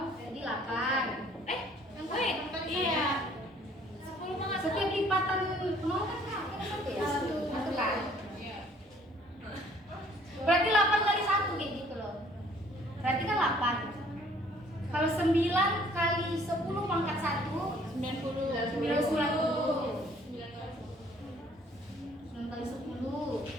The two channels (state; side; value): normal; both; correlation 0.59